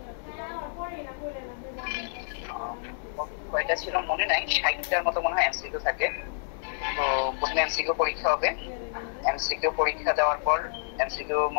কয়টা ছিল মনে নাই, 60টার মতো মনে হয় এমসিকিউ থাকে। তো প্রথমে এমসিকিউ পরীক্ষা হবে। এমসিকিউ পরীক্ষা দেওয়ার পর এমসিকিউ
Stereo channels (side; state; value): right; silent; digital silence